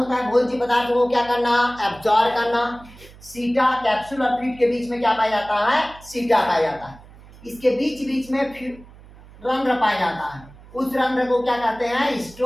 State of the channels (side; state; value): right; noise; hum, 21 dB below the sound